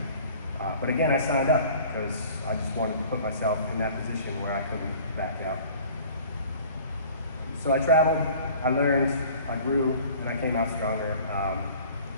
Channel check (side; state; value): both; inverted; correlation -0.47